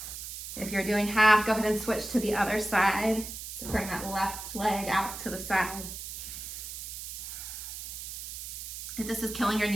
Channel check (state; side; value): noise; right; hiss, 8 dB below the sound